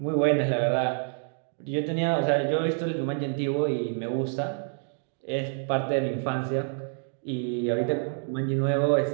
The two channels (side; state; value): left; silent; digital silence